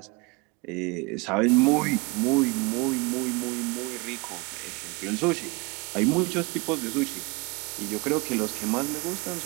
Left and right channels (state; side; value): quieter; left; 27.5 dB